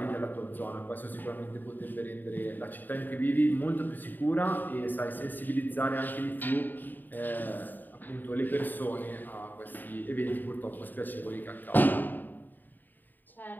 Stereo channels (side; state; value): right; late; 0.089 ms